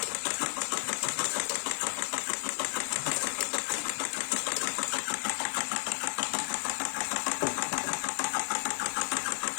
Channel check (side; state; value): right; silent; 56 dB below the other